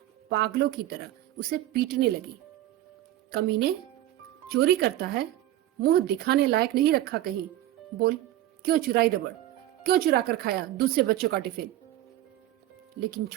पागलों की तरह उसे पीटने लगी। कमीने, चोरी करता है, मुंह दिखाने लायक नहीं रखा कहीं। बोल, क्यों चुराई रबड़, क्यों चुरा कर खाया दूसरे बच्चों का टिफिन। लेकिन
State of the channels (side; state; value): left; quieter; 14.1 dB